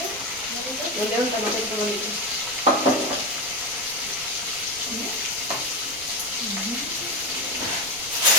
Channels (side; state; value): right; noise; rumble, 19 dB below the sound